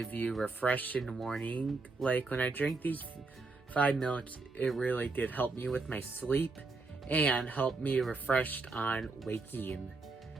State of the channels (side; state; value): left; quieter; 3.8 dB